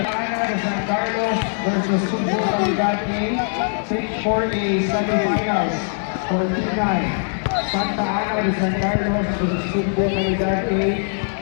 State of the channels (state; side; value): silent; right; 65 dB below the other